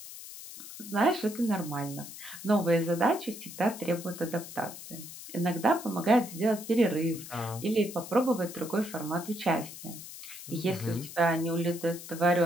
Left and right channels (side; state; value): left; noise; hiss, 13 dB below the sound